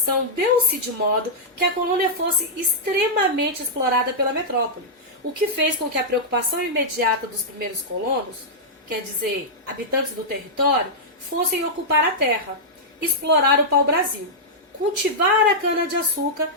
deu-se de modo que a colônia fosse extremamente explorada pela metrópole, o que fez com que a preocupação imediata dos primeiros colonos, quer dizer, habitantes do território, fossem ocupar a terra, explorar o pau-brasil, cultivar a cana-de-açúcar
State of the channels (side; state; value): both; normal; correlation -0.09